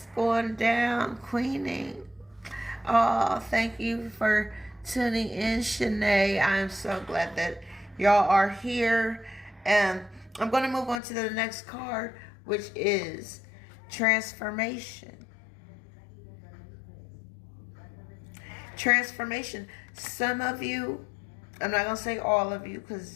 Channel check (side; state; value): right; drops out; at 11.0 s